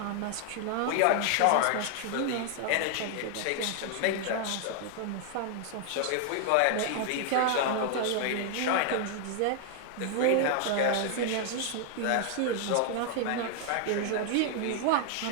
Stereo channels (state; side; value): different; both; correlation 0.00